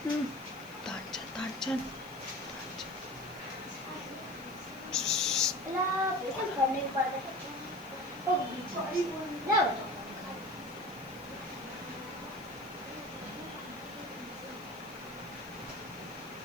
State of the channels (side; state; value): left; noise; hiss, 22 dB below the sound